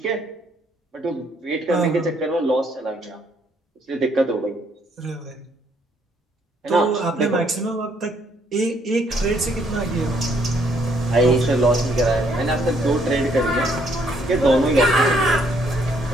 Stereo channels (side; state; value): both; normal; correlation 0.68